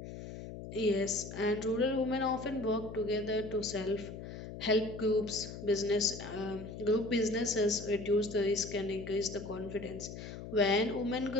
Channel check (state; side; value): noise; left; hum, 10 dB below the sound